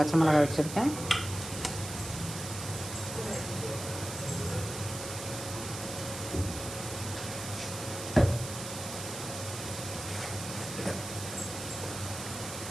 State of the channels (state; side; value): noise; right; hiss, 8 dB below the sound